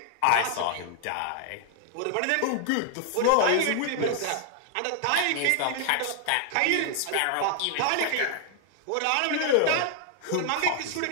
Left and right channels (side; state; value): both; different; correlation 0.00